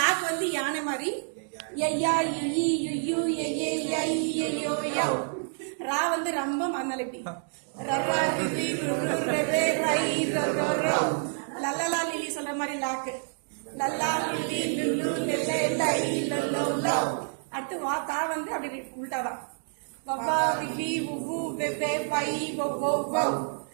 வந்து யானை மாதிரி ஐயா இ யு ஏ ஐ யோ யவ். ரா வந்து ரம்பம் அதனால இப்படி ரரா ரிரி ருரு ரெரே ரை ரரோ ரவ். லல்லலா லிலி சொல்ற மாதிரி லாக்கு லல்லா லிலி லுல்லு லெல்லே லை லல்லோ லவ். அடுத்து வா தா வந்து அப்படி உள்டாதான் வவ்வா விவி உவு வெவ்வே பை ஒவ்வோ வவ்.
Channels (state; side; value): silent; left; digital silence